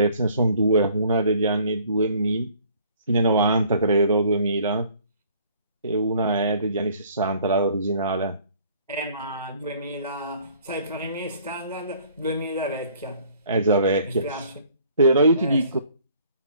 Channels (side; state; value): both; inverted; correlation -0.57